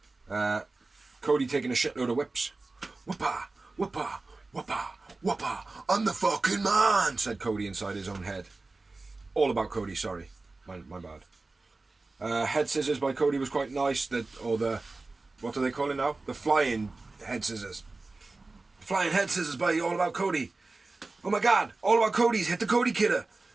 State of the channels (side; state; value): left; quieter; 3.4 dB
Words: Cody taking a shitload of whips. Whoopa, whoopa, whoopa, whoopa. I'm the fucking man, said Cody inside his own head. All about Cody, sorry. My bad. Head scissors by Cody was quite nice. What do they call it now? The flying head scissors. Flying head scissors by All About Cody. Oh my god, All About Cody's hit the Cody